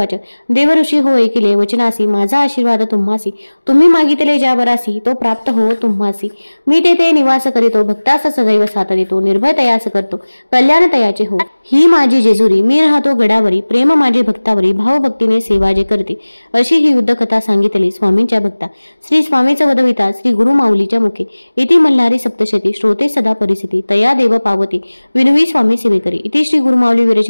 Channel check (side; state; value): both; inverted; correlation -1.00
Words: देव ऋषी हो ऐकिले वचनासी, माझा आशीर्वाद तुम्हासी, तुम्ही मागितले ज्या बरासी, तो प्राप्त हो तुम्हासी. मी तेथे निवास करीतो, भक्तास सदैव साथ देतो, निर्भय तयास करतो, कल्याण तयाचे हो. ही माझी जेजुरी, मी राहतो गडावरी, प्रेम माझे भक्तावरी, भावभक्तीने सेवा जे करते. अशी ही युद्ध कथा सांगितली स्वामींच्या भक्ता. श्री स्वामीचा वदविता श्री गुरु माऊलीच्या मुखे. इति मल्हारी सप्तशती, श्रोते सदा परिस्थिती, तया देव पावती, विनवी स्वामी सेवेकरी. इति श्री गुरु माऊली